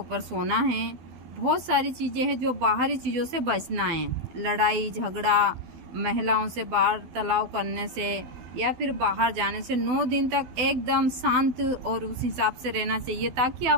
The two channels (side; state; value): left; late; 12 ms